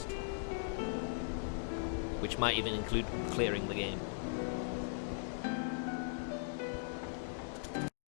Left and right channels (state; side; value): silent; right; digital silence